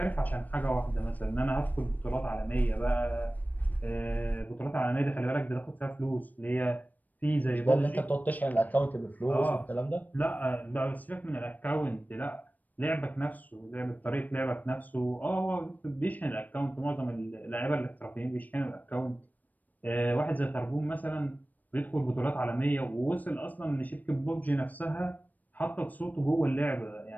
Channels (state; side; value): late; right; 0.082 ms